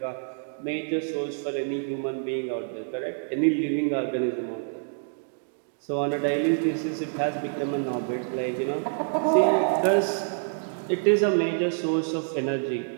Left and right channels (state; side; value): silent; left; digital silence